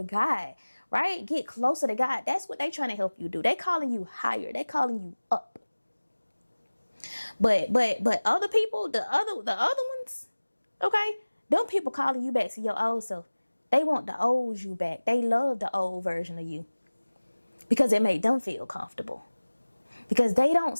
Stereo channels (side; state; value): both; inverted; correlation -1.00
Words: God, right? Get closer to God. That's what they trying to help you do. They calling you higher. They calling you up. But other people, the other ones, okay? Them people calling you back to your old self. They want the old you back. They love the old version of you because it made them feel comfortable. Because they don't